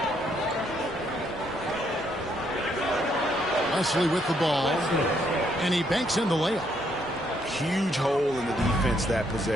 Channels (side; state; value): both; normal; correlation 0.72